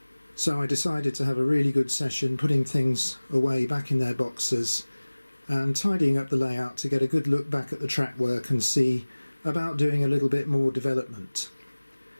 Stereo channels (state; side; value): inverted; both; correlation -1.00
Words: so I decided to have a really good session putting things away back in their boxes and tidying up the layout to get a good look back at the track work and see about doing a little bit more development.